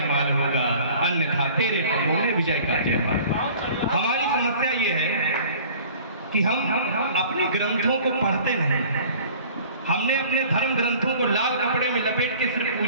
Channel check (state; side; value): inverted; both; correlation -0.48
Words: होगा, अन्यथा तेरे पगों में विजय का जयमाल। हमारी समस्या ये है कि हम अपने ग्रंथों को पढ़ते नहीं, हमने अपने धर्म ग्रंथों को लाल कपड़े में लपेट के सिर्फ